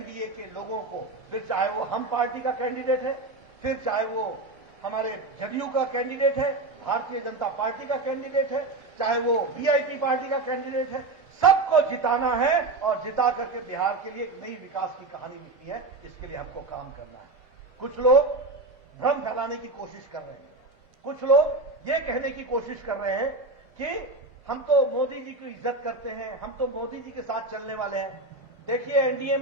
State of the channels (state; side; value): quieter; left; 3.2 dB